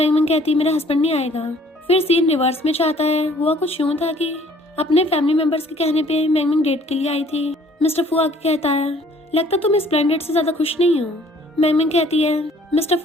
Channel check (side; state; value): both; normal; correlation 0.57